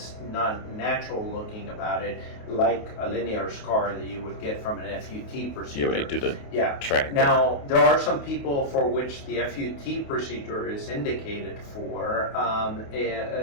not natural looking about it, like a linear scar that you would get from an F.U.T. procedure. Yeah, when they do the track. Now, there are some people for which the F.U.T. procedure is indicated for,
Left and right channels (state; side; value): late; right; 28 ms